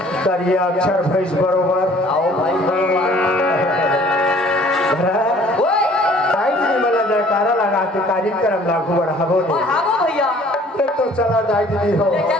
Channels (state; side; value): normal; both; correlation 0.54